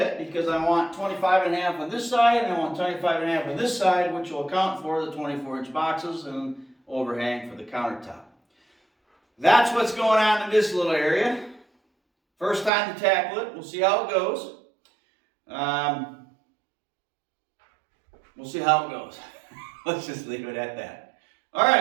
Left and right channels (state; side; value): drops out; left; at 12.7 s